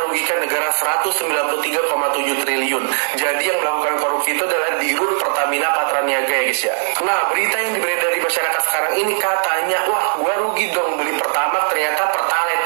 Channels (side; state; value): left; silent; digital silence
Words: rugikan negara 193,7 triliun. Jadi yang melakukan korupsi itu adalah Dirut Pertamina Patraniaga ya guys ya. Nah, berita yang beredar di masyarakat sekarang ini katanya, wah gua rugi dong beli Pertamax, ternyata Pertalite,